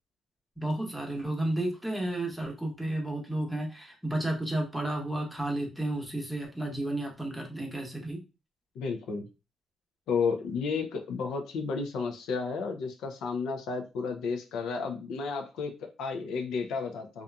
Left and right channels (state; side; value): normal; both; correlation 0.80